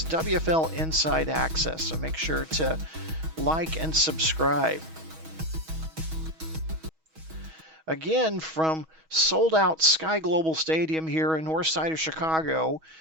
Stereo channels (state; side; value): late; left; 6.3 ms